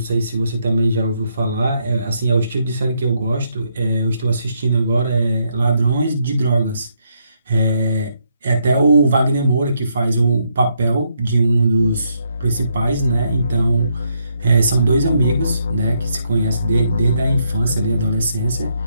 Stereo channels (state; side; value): inverted; both; correlation -0.76